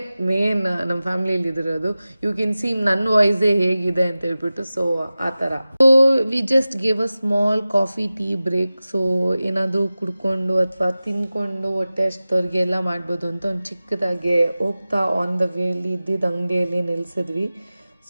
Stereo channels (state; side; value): inverted; both; correlation -0.96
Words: ಮೇನ್ ನಮ್ಮ ಫ್ಯಾಮ್ಲಿಯಲ್ಲಿ ಇದಿರೋದು. ಯು ಕ್ಯಾನ್ ಸಿ ನನ್ನ ವಾಯ್ಸೇ ಹೇಗಿದೆ ಅಂತ ಹೇಳ್ಬಿಟ್ಟು. ಸೊ ಆ ಥರ. So we just give a small coffee tea break. So ಏನಾದರೂ ಕುಡ್ಕೊಂಡು ಅಥವಾ ತಿಂದ್ಕೊಂಡು ಹೊಟ್ಟೆ ಅಷ್ಟವ್ರಿಗೆ ಎಲ್ಲ ಮಾಡ್ಬೋದು ಅಂತ ಒಂದು ಚಿಕ್ಕದಾಗೆ ಹೋಗ್ತಾ ಆನ್ ದ ವೇಲಿ ಇದ್ದಿದ್ದ ಅಂಗಡಿಯಲ್ಲಿ ನಿಲ್ಲಿಸಿದ್ವಿ.